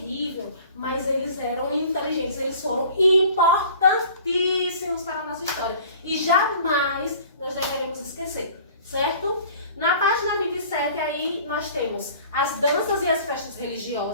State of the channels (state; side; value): inverted; both; correlation -0.48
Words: mas eles eram inteligentes, eles foram importantíssimos para a nossa história. E jamais nós deveremos esquecer, certo? Na página 27, aí nós temos as danças e as festas